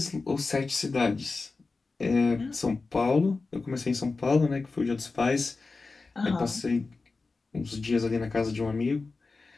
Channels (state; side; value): quieter; right; 3.9 dB